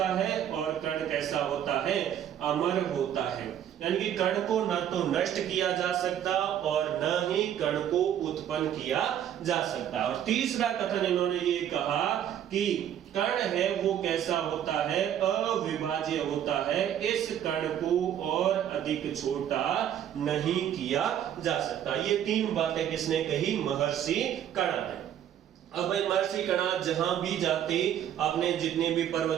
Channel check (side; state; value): left; quieter; 10.2 dB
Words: है और कण कैसा होता है? अमर होता है। यानी कि कण को न तो नष्ट किया जा सकता और न ही कण को उत्पन्न किया जा सकता। और तीसरा कथन इन्होंने ये कहा कि कण है वो कैसा होता है? अविभाज्य होता है। इस कण को और अधिक छोटा नहीं किया जा सकता। ये 3 बातें किसने कही? महर्षि कणाद ने। अब भाई महर्षि कणाद जहां भी जाते, आपने जितने भी